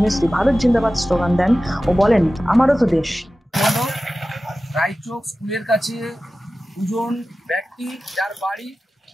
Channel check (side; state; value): both; normal; correlation 0.95